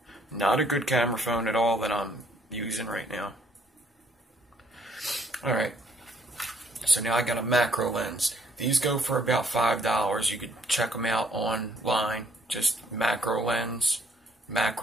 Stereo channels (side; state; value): both; normal; correlation 0.65